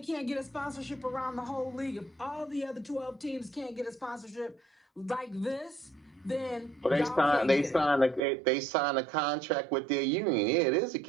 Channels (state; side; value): drops out; left; at 8.2 s